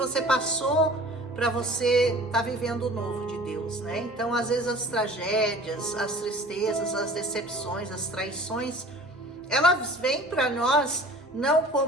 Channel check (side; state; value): both; normal; correlation 0.45